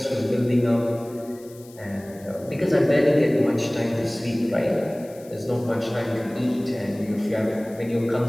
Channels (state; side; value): noise; left; hiss, 24 dB below the sound